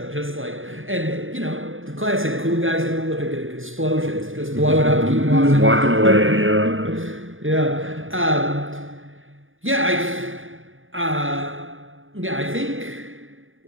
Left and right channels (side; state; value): left; late; 0.58 ms